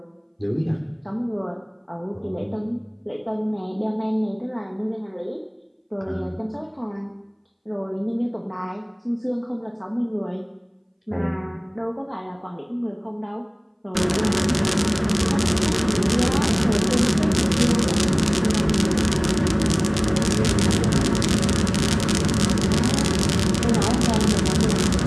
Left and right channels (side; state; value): both; identical; correlation 1.00